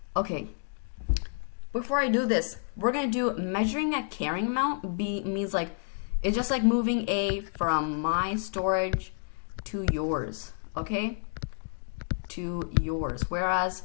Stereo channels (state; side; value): silent; right; digital silence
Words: Okay. Before I do this, we're going to do measuring a carrying amount. B means like, it's just like moving A from my storage to yours, okay? To yours. Whereas